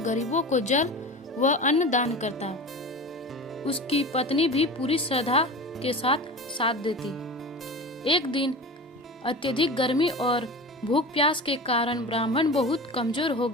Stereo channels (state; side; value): normal; both; correlation 0.32